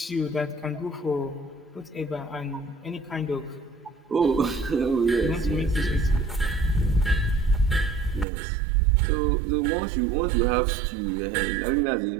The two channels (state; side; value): drops out; left; at 8.2 s